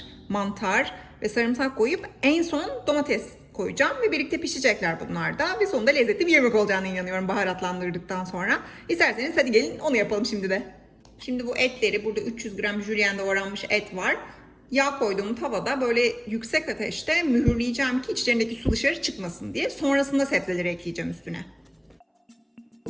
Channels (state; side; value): identical; both; correlation 1.00